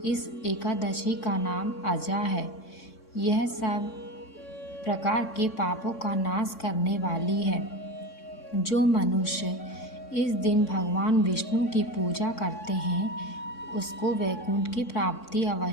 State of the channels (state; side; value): late; right; 3.6 ms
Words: इस एकादशी का नाम अजा है। यह सब प्रकार के पापों का नाश करने वाली है। जो मनुष्य इस दिन भगवान विष्णु की पूजा करते हैं उसको वैकुंठ की प्राप्ति